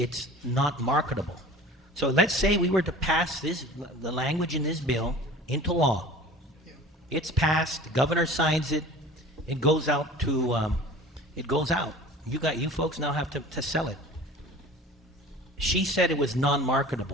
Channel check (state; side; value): normal; both; correlation 0.41